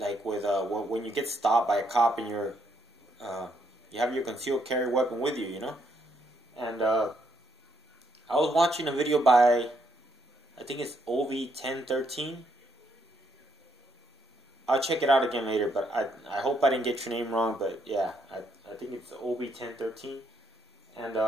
with when you get stopped by a cop and you have your concealed carry weapon with you, you know. And I was watching a video by, I think it's OV1013. I'll check it out again later, but I hope I didn't get your name wrong. But yeah, I think it's OV1013. And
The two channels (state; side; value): normal; both; correlation 0.74